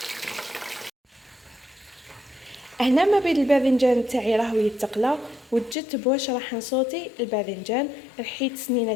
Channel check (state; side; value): drops out; right; at 5.8 s